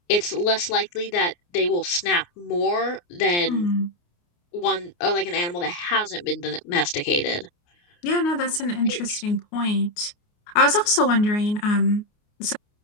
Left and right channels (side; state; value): right; late; 29 ms